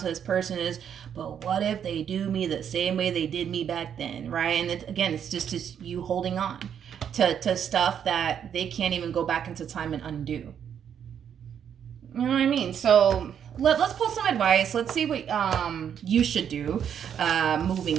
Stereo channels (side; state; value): left; quieter; 8.5 dB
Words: this person is, but what if they do me the same way they did me back then, right? And it's just you holding on to stuff that they can't even go back into time and undo. You know what I mean? So let's pull some advice. Let's see what you should do